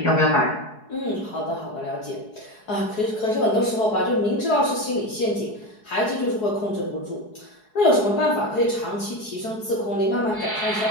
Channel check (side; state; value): right; late; 4.7 ms